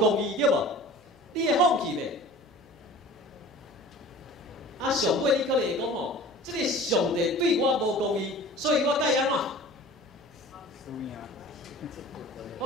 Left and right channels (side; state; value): both; normal; correlation 0.42